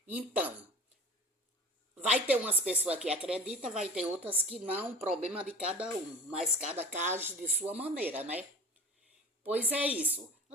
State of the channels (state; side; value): normal; both; correlation 0.37